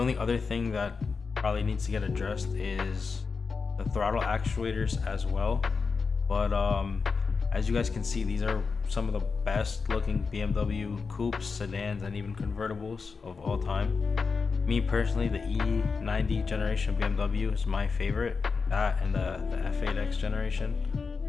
other thing that probably needs to get addressed is the throttle actuators as well. But as you guys can see, these are some of the best looking BMW coupes, sedans, and even convertibles of all time. Me personally, the E90 generation BMW is my favorite, that and the F8X generation.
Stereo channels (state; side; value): quieter; right; 4.9 dB